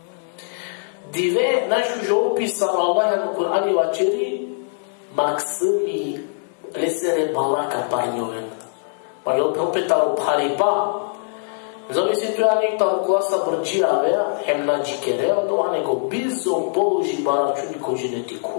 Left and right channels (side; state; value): right; silent; 59 dB below the other